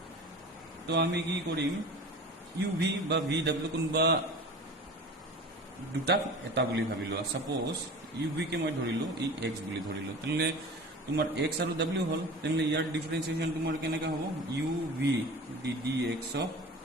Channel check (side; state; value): both; normal; correlation 0.37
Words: তো আমি কি কৰিম uv বা vw কোনবা দুটা এটা বুলি ভাবিলো সাপোজ uv কে মই ধৰিলো এই x বুলি ধৰিলো তেনে তোমাৰ x আৰু w হল তেনে ইয়াৰ ডিফাৰেন্সিয়েশন তোমাৰ কেনেকা হ'ব uv ddx of